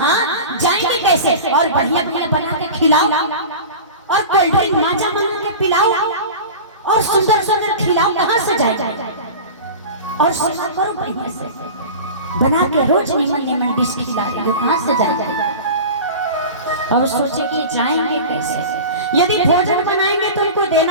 जाएंगे कैसे, और बढ़िया बढ़िया बना के खिलाओ, और कोल्ड ड्रिंक माजा बना के पिलाओ, और सुंदर सुंदर खिलाओ, कहाँ से जाएगा, और सेवा करो बढ़िया से बना के, रोज निमन निमन डिश खिला रही हो, कहाँ से जाएगा। और सोचे कि जाएंगे कैसे, यदि भोजन बनाएंगे तो उनको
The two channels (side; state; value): both; inverted; correlation -0.33